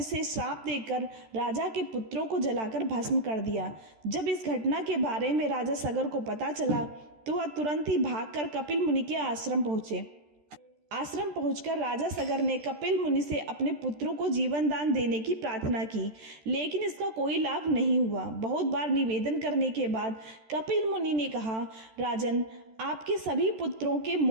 से श्राप देकर राजा के पुत्रों को जलाकर भस्म कर दिया। जब इस घटना के बारे में राजा सगर को पता चला तो वह तुरंत ही भागकर कपिल मुनि के आश्रम पहुंचे। आश्रम पहुंचकर राजा सगर ने कपिल मुनि से अपने पुत्रों को जीवन दान देने की प्रार्थना की, लेकिन इसका कोई लाभ नहीं हुआ। बहुत बार निवेदन करने के बाद कपिल मुनि ने कहा, राजन, आपके सभी पुत्रों के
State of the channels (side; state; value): left; late; 13 ms